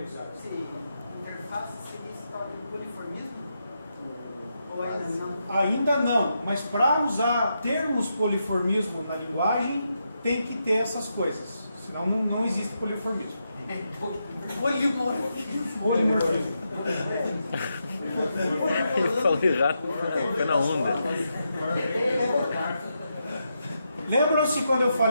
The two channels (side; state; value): both; inverted; correlation -0.84